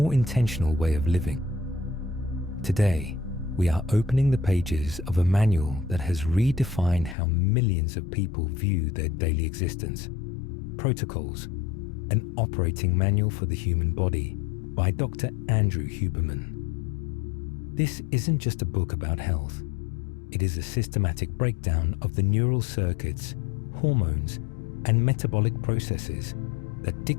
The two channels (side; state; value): right; drops out; at 7.2 s